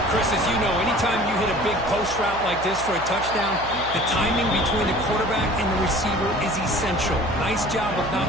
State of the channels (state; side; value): noise; right; hum, 13 dB below the sound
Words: Chris, as you know, anytime you hit a big post route like this for a touchdown, the timing between the quarterback and the receiver is essential. Nice job of not